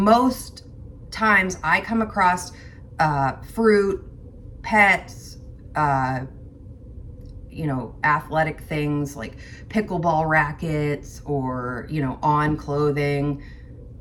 times I come across fruit, pets, you know, athletic things like pickleball rackets, or, you know, on clothing,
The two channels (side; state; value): both; identical; correlation 1.00